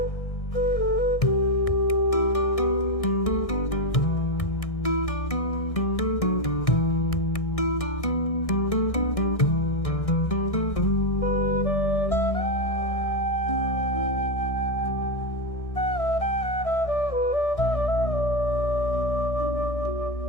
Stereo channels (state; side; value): late; right; 1.6 ms